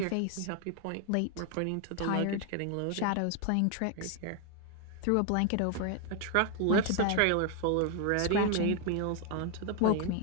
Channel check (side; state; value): both; different; correlation 0.01